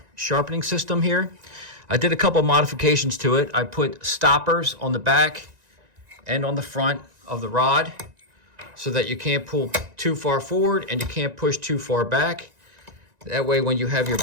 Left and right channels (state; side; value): late; left; 1.9 ms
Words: sharpening system here. I did a couple modifications to it. I put stoppers on the back and on the front of the rod so that you can't pull too far forward and you can't push too far back. That way when you have your